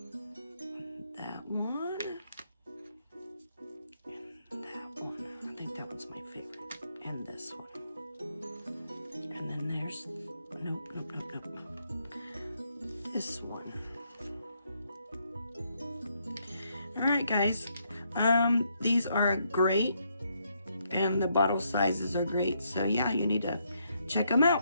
That one. And that one. I think that one's my favorite. And this one. And then there's, nope. This one. Alright guys, these are great, and the bottle sizes are great, so yeah, you need to check them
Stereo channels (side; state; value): both; inverted; correlation -0.75